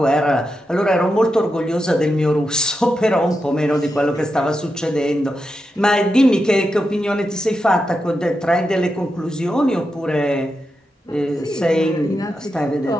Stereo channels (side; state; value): both; normal; correlation 0.88